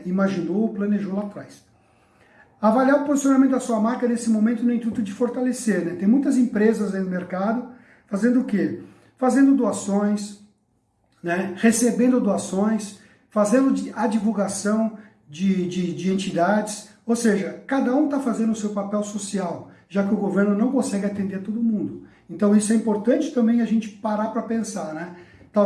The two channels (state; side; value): identical; both; correlation 1.00